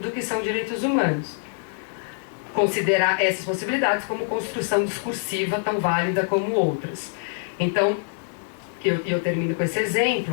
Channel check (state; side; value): silent; right; digital silence